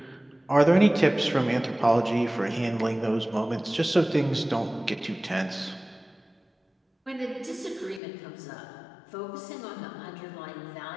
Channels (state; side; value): drops out; right; at 8.0 s